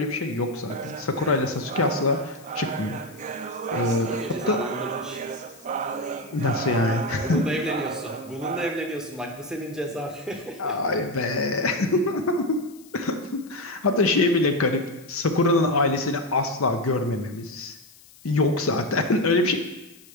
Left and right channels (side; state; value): left; noise; hiss, 24 dB below the sound